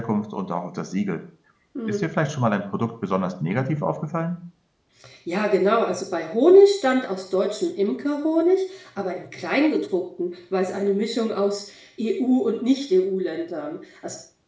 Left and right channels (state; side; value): identical; both; correlation 1.00